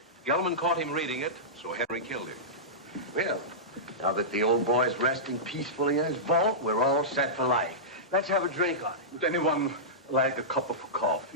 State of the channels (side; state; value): both; normal; correlation -0.15